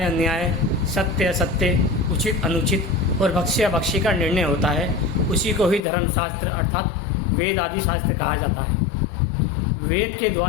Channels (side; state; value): right; drops out; at 5.8 s